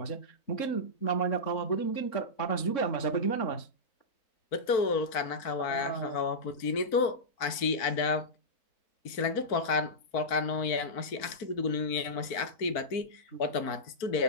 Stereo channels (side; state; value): right; late; 4.4 ms